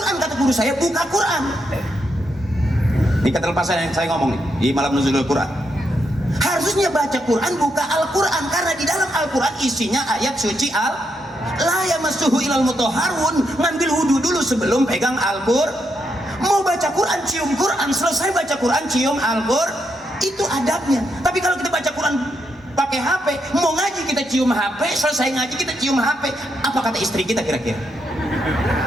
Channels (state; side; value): normal; both; correlation 0.80